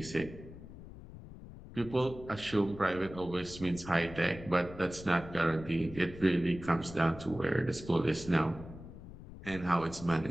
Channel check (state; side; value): noise; left; rumble, 15 dB below the sound